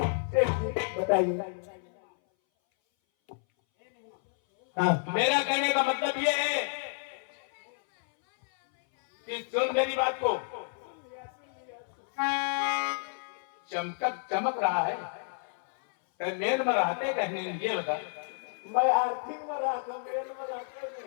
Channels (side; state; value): right; silent; 57 dB below the other